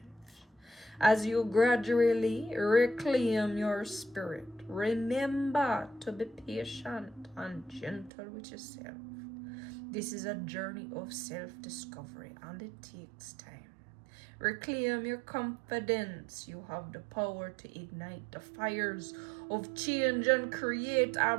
As you gradually reclaim your spirit, remember to be patient and gentle with yourself. This is a journey of self-discovery, and it takes time. Reclaim your confidence. You have the power to ignite the fires of change and create a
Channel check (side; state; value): left; drops out; at 8.1 s